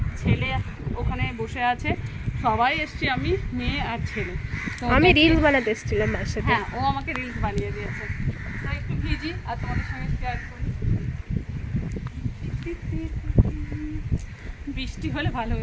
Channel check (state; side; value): identical; both; correlation 1.00